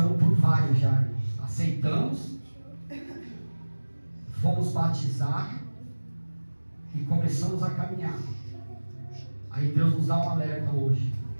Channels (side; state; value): both; inverted; correlation -1.00